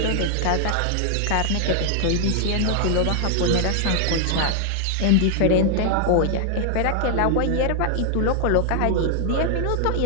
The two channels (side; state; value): both; different; correlation 0.00